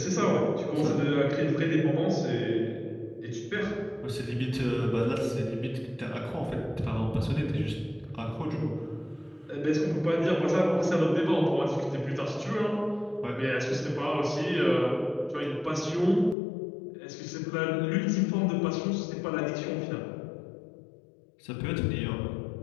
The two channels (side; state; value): right; drops out; at 16.4 s